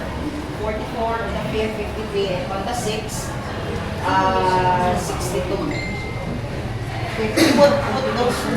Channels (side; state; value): both; identical; correlation 1.00